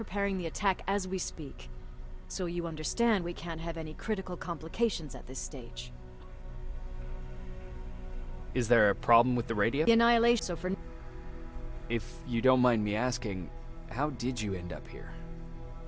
the attack as we speak, so you understand we can't have any critical complications at this stage. Is there a problem with the radio? The annihilation, so for... If you don't mind me asking, how did you end up here?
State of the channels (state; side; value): identical; both; correlation 1.00